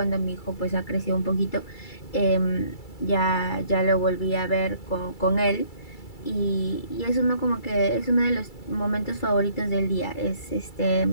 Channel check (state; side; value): late; right; 2.3 ms